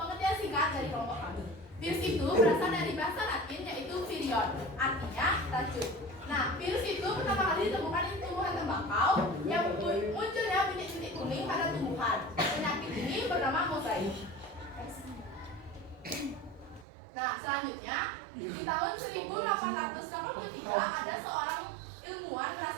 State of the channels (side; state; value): left; drops out; at 16.9 s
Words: singkat dari kelompok kami. Virus itu berasal dari bahasa Latin yaitu virion, artinya racun. Nah, virus itu pertama kali ditemukan di tumbuhan tembakau yang munculnya bintik-bintik kuning pada tumbuhan. Penyakit ini bernama mozaik. Nah, selanjutnya di tahun 1883 ada seorang ilmuwan